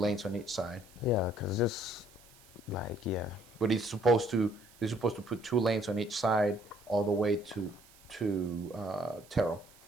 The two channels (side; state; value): right; noise; hiss, 25 dB below the sound